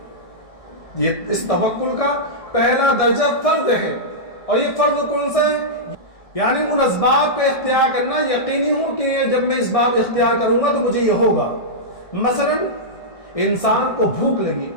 یہ اس توکل کا پہلا درجہ فرض ہے، اور یہ فرض کون سا ہے؟ یعنی ان اسباب کا اختیار کرنا، یقینی ہو کہ جب میں اسباب اختیار کروں گا تو مجھے یہ ہوگا۔ مثلا انسان کو بھوک لگی،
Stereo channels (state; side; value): late; right; 1.6 ms